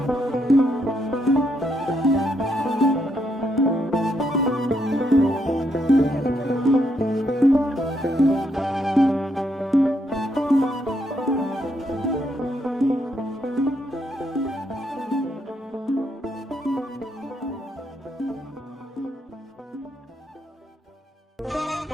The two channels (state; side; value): normal; both; correlation 0.77